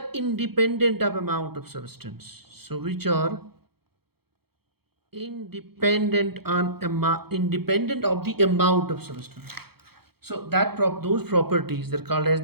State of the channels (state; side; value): late; left; 0.96 ms